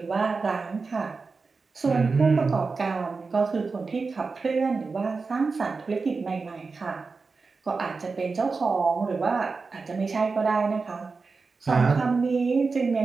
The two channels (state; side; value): quieter; left; 4.4 dB